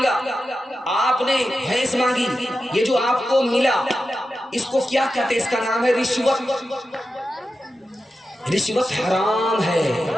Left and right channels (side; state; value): both; normal; correlation 0.91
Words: آپ نے بھینس مانگی, یہ جو آپ کو ملا اس کو کیا کہتے ہیں؟ اس کا نام ہے رشوت. رشوت حرام ہے.